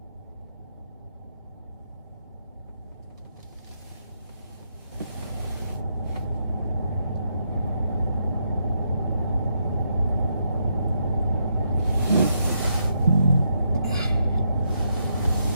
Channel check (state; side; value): inverted; both; correlation -0.78